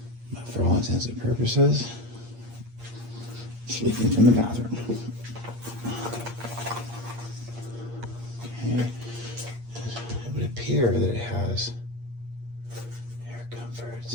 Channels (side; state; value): left; late; 8.6 ms